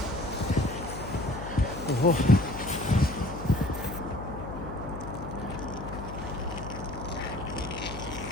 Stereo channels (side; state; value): left; noise; hum, 9 dB below the sound